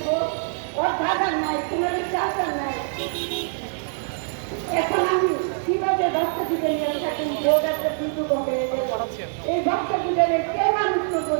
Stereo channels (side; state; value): left; silent; digital silence